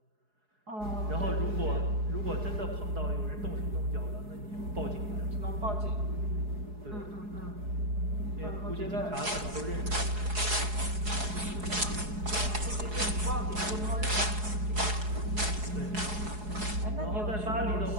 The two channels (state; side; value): late; left; 4.7 ms